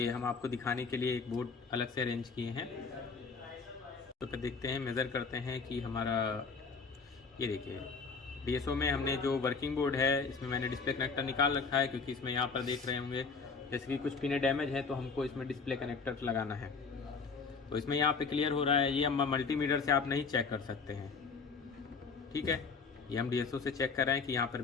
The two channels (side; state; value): right; quieter; 5.0 dB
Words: हम आपको दिखाने के लिए एक बोर्ड अलग से अरेंज किए हैं। तो फिर देखते हैं, मेज़र करते हैं कि हमारा, ये देखिए डीएसओ में हमने जो वर्किंग बोर्ड है इसमें मैंने डिस्प्ले कनेक्टर निकाल रखा है, क्योंकि इसमें यहाँ पर देख रहे होंगे जैसे कि कुछ पिने डैमेज है तो हमको इसमें डिस्प्ले कनेक्टर लगाना है। तो इसमें यहाँ पे क्लियर हो रहा है, ये हम मल्टीमीटर से आप नहीं चेक कर सकते हैं। ठीक है, ये हम डीएसओ से चेक कर रहे हैं कि यहाँ पर